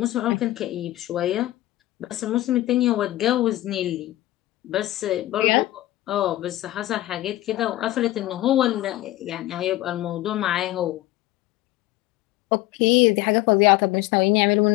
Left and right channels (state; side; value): quieter; right; 16.4 dB